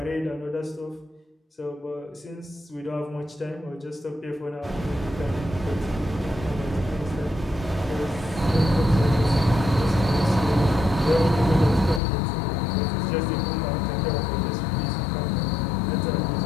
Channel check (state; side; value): drops out; right; at 12.0 s